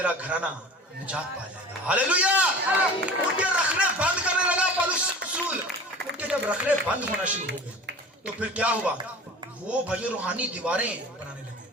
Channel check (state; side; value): normal; both; correlation 0.38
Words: گھرانہ نجات پا جائے گا. ہاللویا. ان کے رکھنے بند کرنے لگا پلوس رسول. ان کے جب رکھنے بند ہونا شروع ہو گئے تو پھر کیا ہوا, وہ بھائی روحانی دیواریں بنانے لگے.